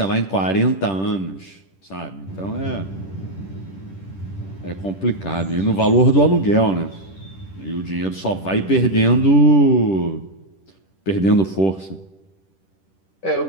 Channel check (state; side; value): late; right; 10 ms